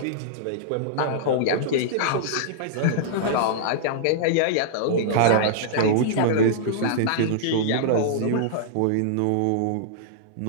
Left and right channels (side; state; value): both; different; correlation -0.02